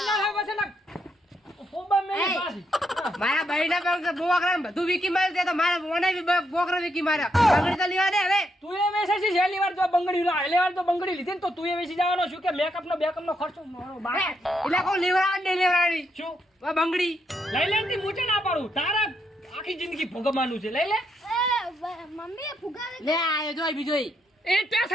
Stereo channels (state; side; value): normal; both; correlation 0.78